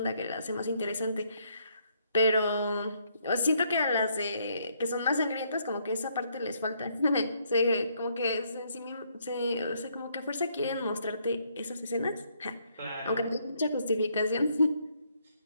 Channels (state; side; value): inverted; both; correlation -0.71